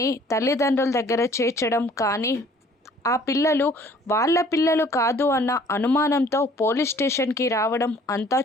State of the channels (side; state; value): both; normal; correlation 0.55